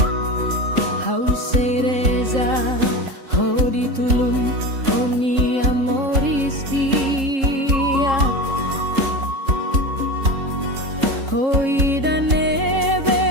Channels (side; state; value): left; late; 3.7 ms